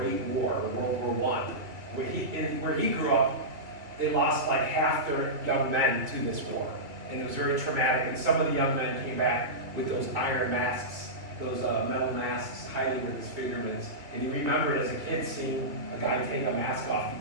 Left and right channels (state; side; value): late; left; 2.9 ms